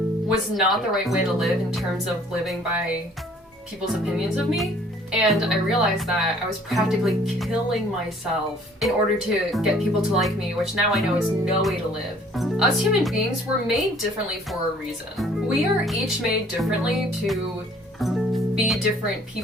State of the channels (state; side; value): normal; both; correlation 0.56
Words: was not the right way to live in terms of living by people's opinions of me. And I realized that I was practically killing myself in order to get people to like me, which now I know is no way to live. Us human beings were made differently for a reason. We are each made differently to be different